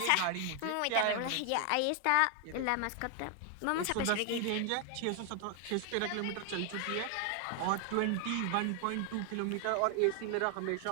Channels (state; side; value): different; both; correlation 0.00